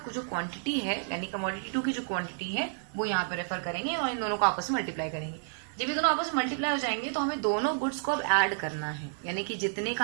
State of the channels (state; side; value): silent; left; 57 dB below the other